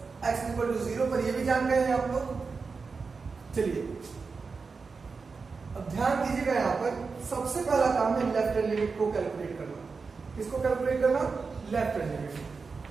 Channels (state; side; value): quieter; left; 4.7 dB